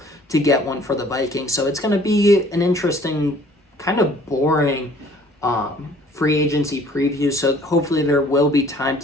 to get one for the Vikings. So it's going to be an interesting, kind of boring free agency preview. So hopefully there will be time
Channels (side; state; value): both; normal; correlation 0.55